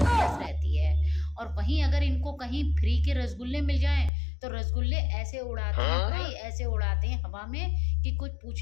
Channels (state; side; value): drops out; right; at 4.1 s